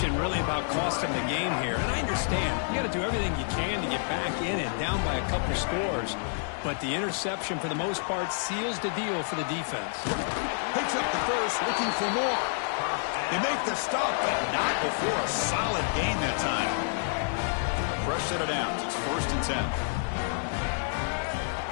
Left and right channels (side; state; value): right; silent; digital silence